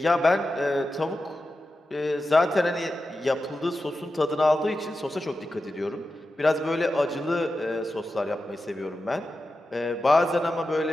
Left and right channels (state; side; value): normal; both; correlation 0.91